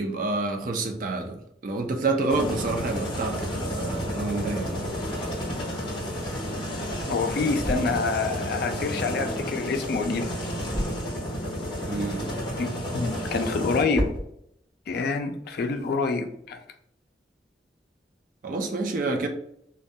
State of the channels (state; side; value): normal; both; correlation 0.43